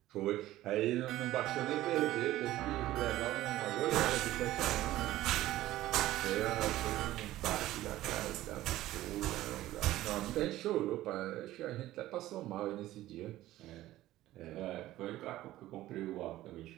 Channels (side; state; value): left; quieter; 15.3 dB